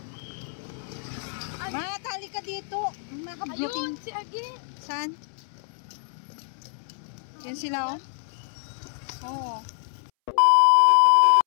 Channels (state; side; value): silent; right; 61 dB below the other